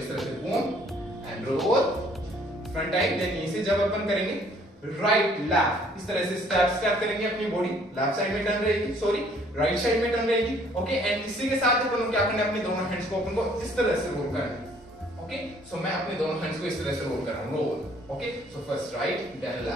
तरह से बूम एंड रोल, फ्रंट आई, देन यहीं से जब अपन करेंगे राइट लेफ्ट, इस तरह से स्टेप करेंगे, अपनी बॉडी लेफ्ट साइड में टर्न रहेगी, सॉरी राइट साइड में टर्न रहेगी। ओके, एंड इसी के साथ अपन को क्या करना है, अपने दोनों हैंड्स को अपन को इस तरह से रोल करना है। ओके, सो मैं अपने दोनों हैंड्स को इस तरह से रोल कर रहा हूं, roll. Okay, so first right then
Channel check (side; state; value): both; normal; correlation 0.60